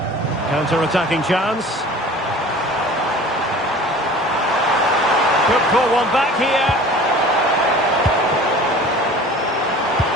Counter-attacking chance. Could pull one back here.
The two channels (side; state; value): both; normal; correlation 0.43